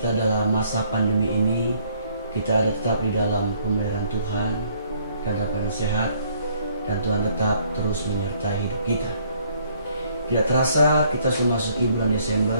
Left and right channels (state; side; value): inverted; both; correlation -0.64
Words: dalam masa pandemi ini, kita ada tetap di dalam pemeliharaan Tuhan, dalam keadaan sehat, dan Tuhan tetap terus menyertai hidup kita. Tidak terasa kita sudah masuk bulan